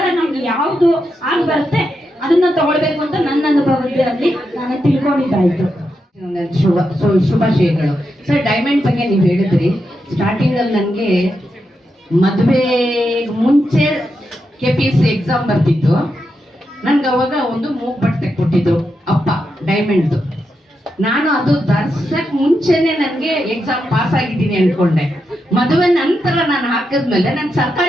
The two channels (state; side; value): normal; both; correlation 0.85